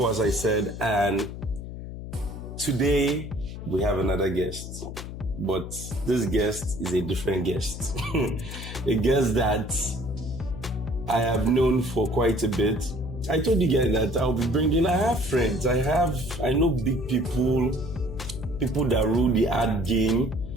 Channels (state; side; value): noise; left; hum, 9 dB below the sound